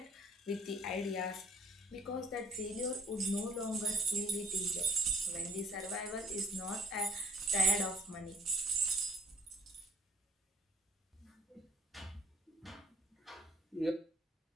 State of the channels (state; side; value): normal; both; correlation 0.60